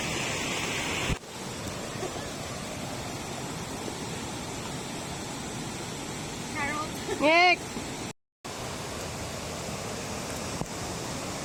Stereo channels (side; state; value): both; identical; correlation 1.00